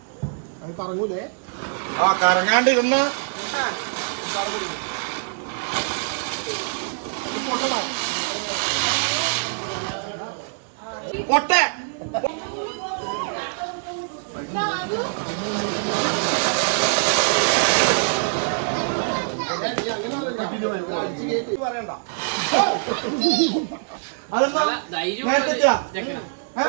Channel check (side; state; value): left; silent; digital silence